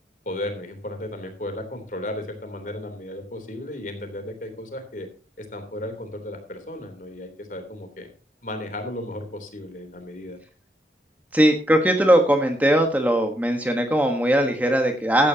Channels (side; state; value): both; normal; correlation 0.75